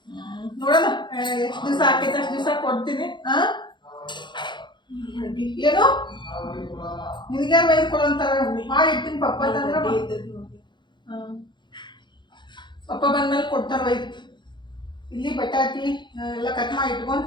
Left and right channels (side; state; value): right; late; 0.22 ms